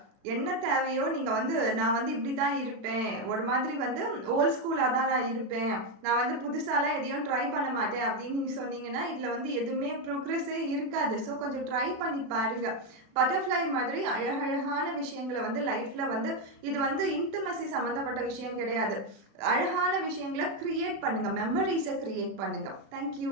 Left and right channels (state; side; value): late; left; 36 ms